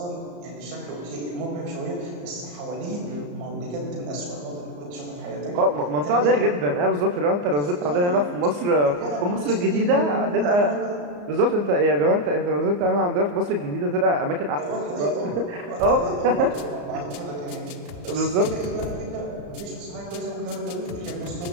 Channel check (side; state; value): left; late; 34 ms